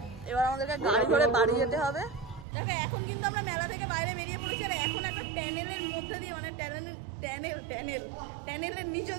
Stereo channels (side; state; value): left; drops out; at 2.5 s